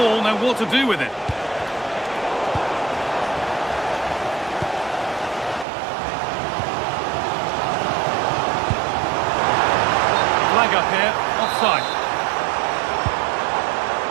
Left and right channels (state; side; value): drops out; left; at 5.7 s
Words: now what to do with it? Flag up here, offside.